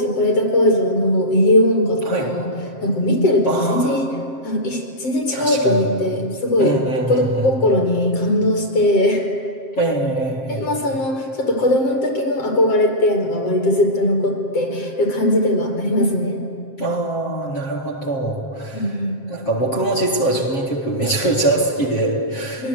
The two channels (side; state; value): right; late; 7.6 ms